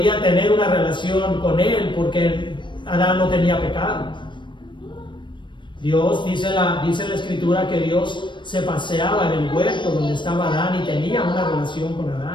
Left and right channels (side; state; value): right; late; 0.23 ms